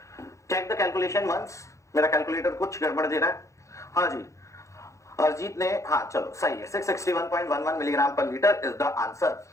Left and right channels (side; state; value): right; late; 0.15 ms